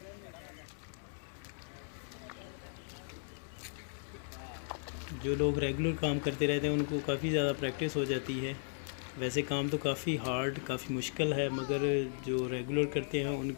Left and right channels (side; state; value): right; silent; digital silence